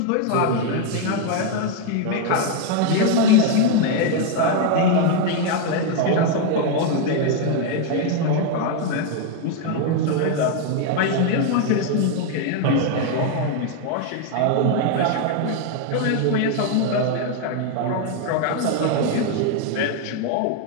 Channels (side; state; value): both; different; correlation 0.01